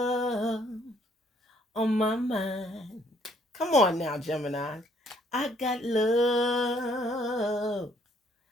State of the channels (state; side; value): normal; both; correlation 0.65